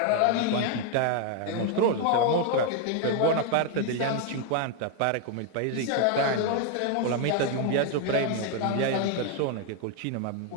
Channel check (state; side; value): different; both; correlation 0.01